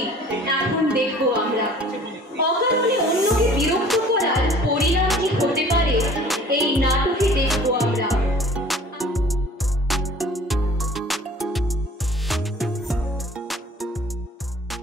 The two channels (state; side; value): normal; both; correlation 0.49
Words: এখন দেখবো আমরা। অকারণে অন্যকে বিরক্ত করার পরিণাম কি হতে পারে এই নাটকে দেখবো আমরা।